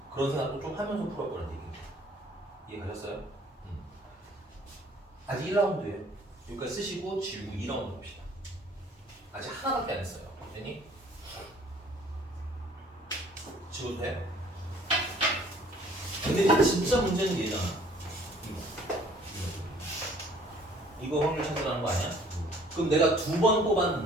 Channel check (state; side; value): normal; both; correlation 0.56